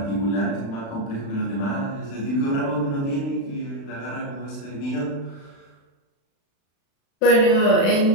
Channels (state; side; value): late; right; 36 ms